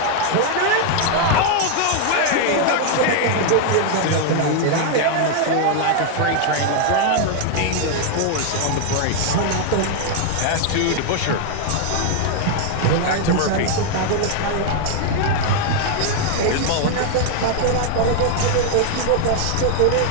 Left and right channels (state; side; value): different; both; correlation 0.00